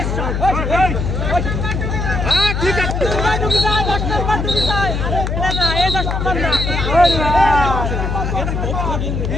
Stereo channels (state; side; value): noise; left; hum, 1 dB below the sound